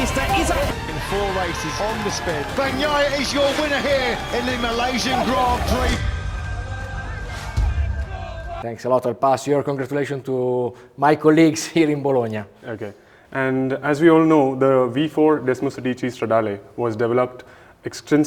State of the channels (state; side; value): identical; both; correlation 1.00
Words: is up. In 4 races on the spin. Bagnaia is your winner here in the Malaysian Grand Prix. Thanks a lot. I'll pass your congratulations to my colleagues here in Bologna. Okay. And as we all know, the V4 Desmosedici Stradale was developed